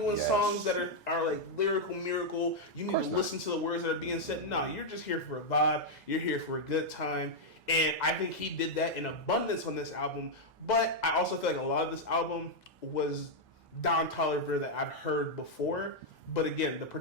songs that are like lyrical miracle. You need to listen to the words that are being said. No, you're just here for a vibe. You're here for a good time. And I think he did that in abundance on this album. But I also feel like a lot of this album was Don Toliver that I've heard before. But again, the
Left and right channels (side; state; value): both; normal; correlation -0.02